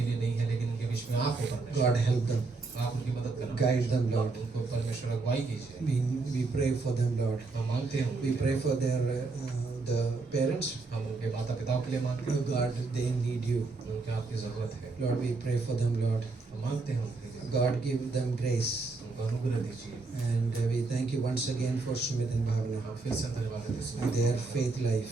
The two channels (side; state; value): left; quieter; 3.8 dB